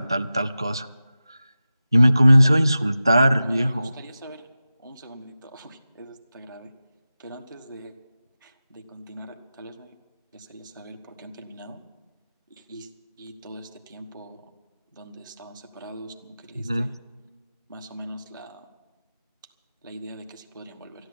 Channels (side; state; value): both; inverted; correlation -0.95